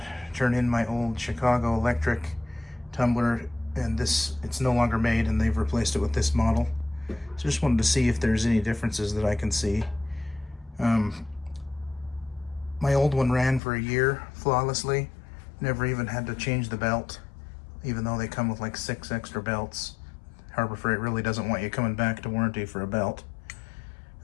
turn in my old Chicago electric tumbler, and it's no longer made, and they've replaced it with this model. So just wanted to see if there's any differences that I can see. My old one ran for a year flawlessly. Never even had to change the belt, even though they come with like 6 extra belts. Harbor Freight really doesn't want you coming back to warranty for a belt.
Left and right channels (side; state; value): right; drops out; at 13.6 s